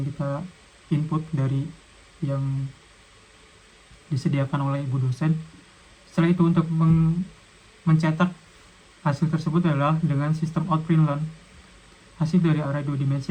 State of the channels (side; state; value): both; identical; correlation 1.00